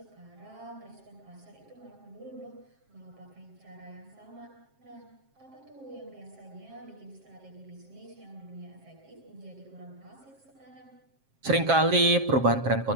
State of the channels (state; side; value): late; left; 7.5 ms